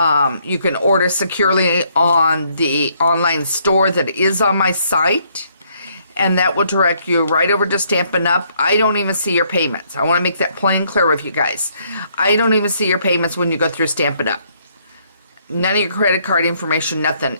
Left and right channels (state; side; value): inverted; both; correlation -0.69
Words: You can order securely on the online store that is on my site, and that will direct you right over to Stampin' Up. I don't even see your payments. I want to make that plain clear with you guys. I don't even see your payments when you go through Stampin' Up. None of your credit card information, nothing